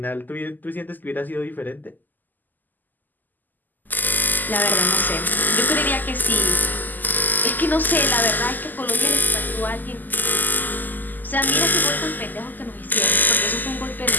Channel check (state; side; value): late; right; 0.085 ms